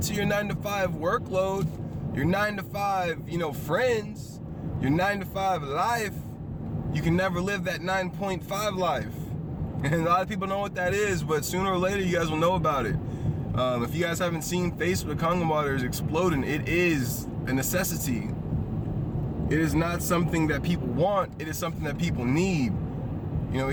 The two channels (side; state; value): both; identical; correlation 1.00